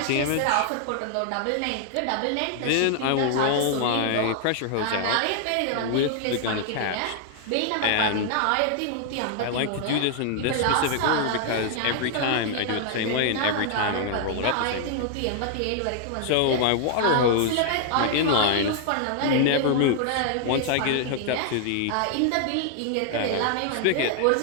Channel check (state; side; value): different; both; correlation 0.00